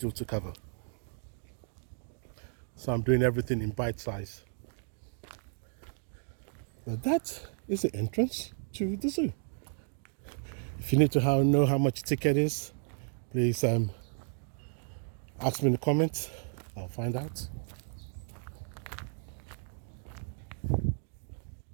to cover. So I'm doing everything in bite size. Now that is the entrance to the zoo. If you need to know how much ticket is, please ask me in the comments. I'll find out.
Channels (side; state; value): left; silent; 56 dB below the other